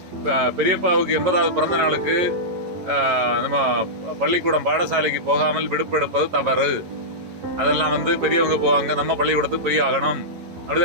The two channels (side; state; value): left; late; 11 ms